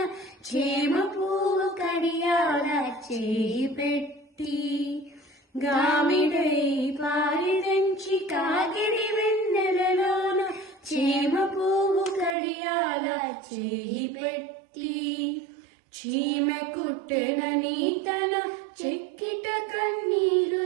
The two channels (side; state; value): left; drops out; at 12.4 s